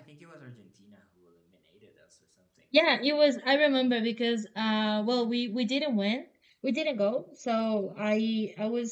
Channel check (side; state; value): both; identical; correlation 1.00